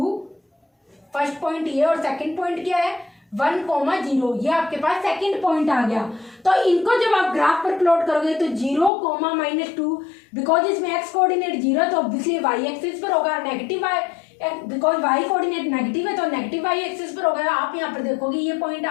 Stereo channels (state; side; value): drops out; right; at 8.9 s